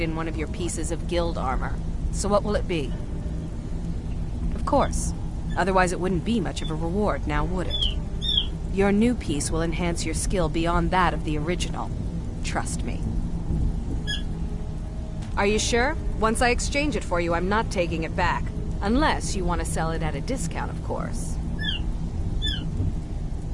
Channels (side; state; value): both; identical; correlation 1.00